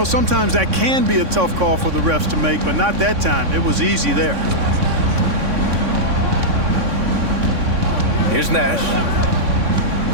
sometimes that can be a tough call for the refs to make, but not that time. It was easy there. Here's Nash.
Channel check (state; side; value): late; left; 3.6 ms